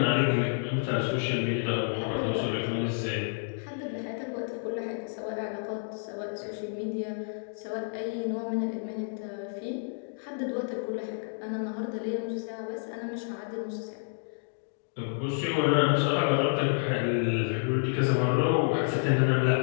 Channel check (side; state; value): right; silent; digital silence